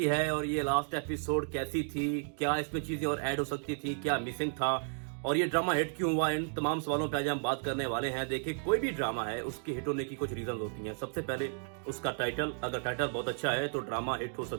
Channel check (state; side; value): silent; left; 56 dB below the other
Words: है और ये लास्ट एपिसोड कैसी थी, क्या इसमें चीजें और ऐड हो सकती थी, क्या मिसिंग था और ये ड्रामा हिट क्यों हुआ, इन तमाम सवालों पे आज हम बात करने वाले हैं। देखिए, कोई भी ड्रामा है उसके हिट होने की कुछ रीजन होती हैं। सबसे पहले उसका टाइटल, अगर टाइटल बहुत अच्छा है तो ड्रामा हिट हो